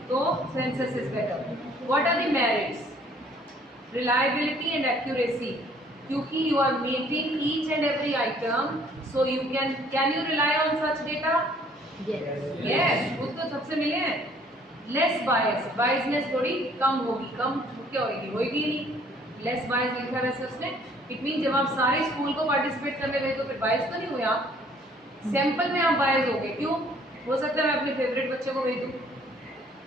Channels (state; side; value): normal; both; correlation 0.59